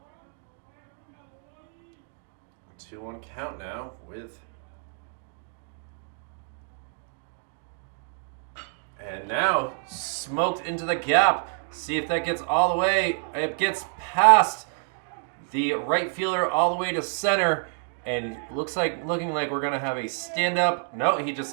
A 2-1 count now with. And now smoked into the gap. See if that gets all the way. It gets past the right fielder all the way to center. And looking like we're going to have a stand-up. No, he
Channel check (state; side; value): silent; left; 60 dB below the other